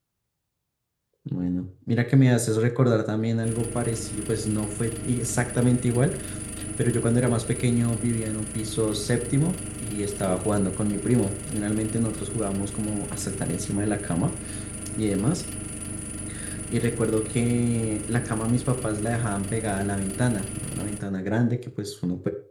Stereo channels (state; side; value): identical; both; correlation 1.00